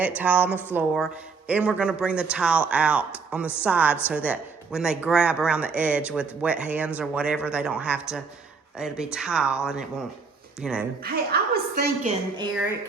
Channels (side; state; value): left; quieter; 4.8 dB